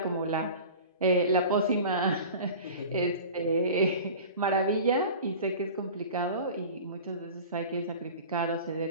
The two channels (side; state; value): both; inverted; correlation -0.37